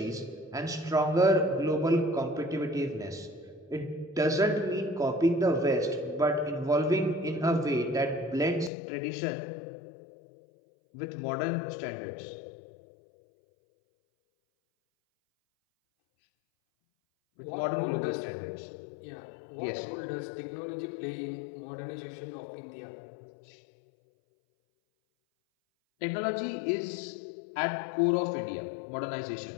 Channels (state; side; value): drops out; right; at 8.7 s